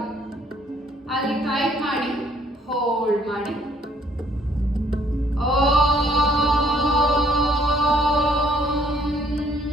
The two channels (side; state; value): both; normal; correlation 0.63